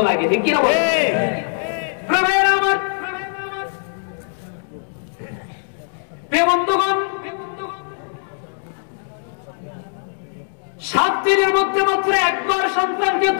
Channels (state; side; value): silent; right; digital silence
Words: লাগে, ঠিক কিনা বলে? বন্ধুগণ, 7 দিনের মধ্যে মাত্র একবার সন্তানকে